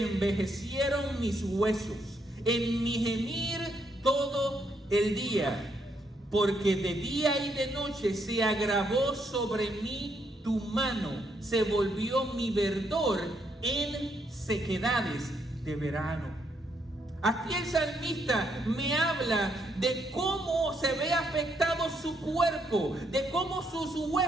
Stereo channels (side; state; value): both; normal; correlation 0.75